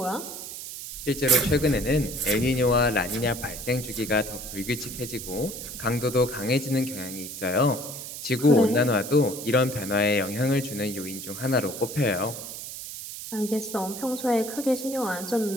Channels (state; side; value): noise; right; hiss, 9 dB below the sound